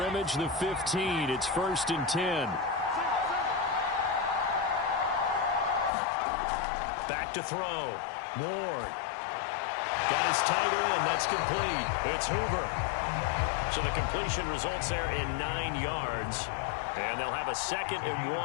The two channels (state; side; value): drops out; right; at 5.9 s